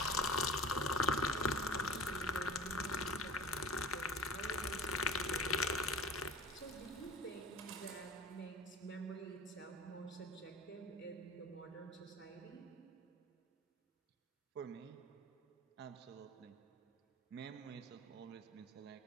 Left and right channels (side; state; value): both; normal; correlation 0.40